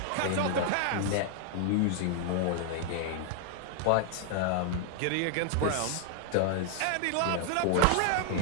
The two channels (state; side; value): different; both; correlation 0.00